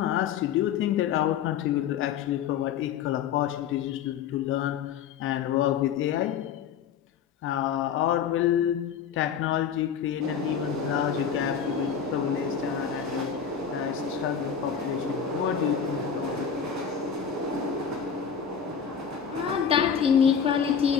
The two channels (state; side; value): quieter; right; 7.5 dB